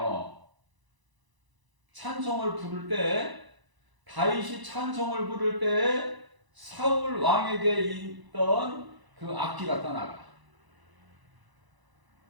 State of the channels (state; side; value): late; left; 1.0 ms